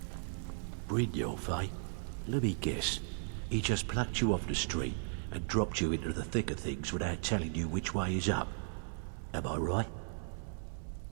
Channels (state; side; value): silent; left; 54 dB below the other